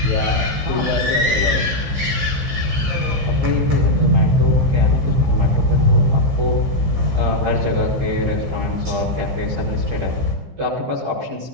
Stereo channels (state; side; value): late; left; 15 ms